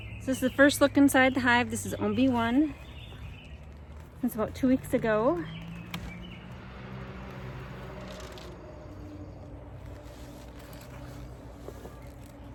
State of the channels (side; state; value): both; identical; correlation 1.00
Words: So this is the first look inside the hive. This is OB1. It's about 2 weeks ago.